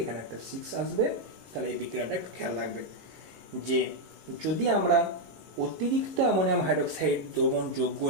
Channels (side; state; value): left; late; 19 ms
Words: এখানে একটা 6 আসবে। তাহলে এই বিক্রিয়াটা একটু খেয়াল রাখবে যে যদি আমরা অতিরিক্ত অ্যামোনিয়াম হাইড্রোক্সাইড দ্রবণ যোগ